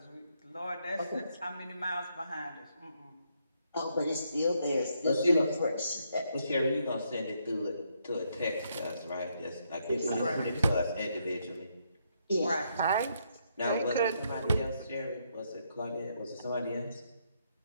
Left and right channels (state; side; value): inverted; both; correlation -0.76